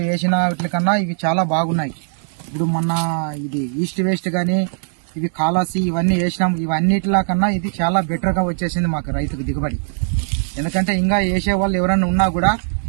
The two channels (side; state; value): left; silent; digital silence